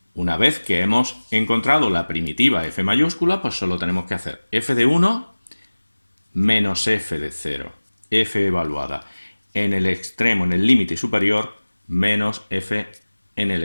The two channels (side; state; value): both; inverted; correlation -1.00